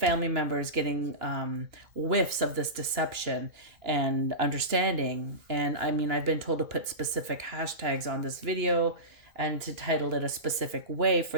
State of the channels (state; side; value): late; left; 2.9 ms